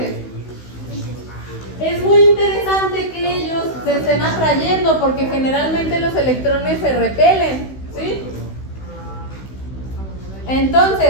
es muy interesante que ellos se estén atrayendo porque generalmente los electrones se repelen, ¿sí?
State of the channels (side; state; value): right; late; 16 ms